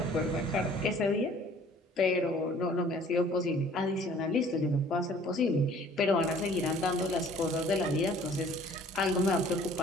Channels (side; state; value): both; normal; correlation 0.53